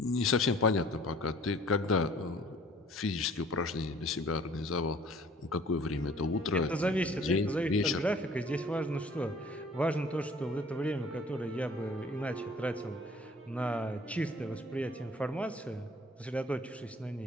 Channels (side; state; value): both; normal; correlation 0.53